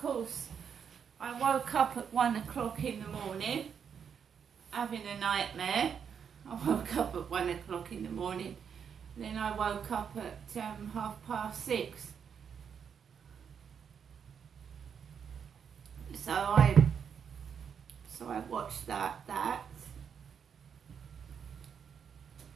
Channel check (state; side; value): quieter; left; 7.3 dB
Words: course I woke up at 1 o'clock in the morning having a nightmare. I woke up at 1 o'clock in the morning, then I woke up at 6:30. So I watched that. I've